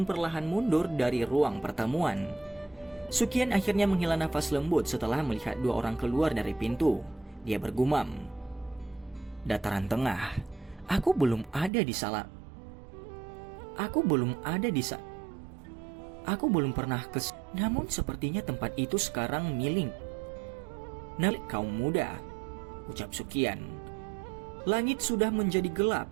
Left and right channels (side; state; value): left; drops out; at 11.7 s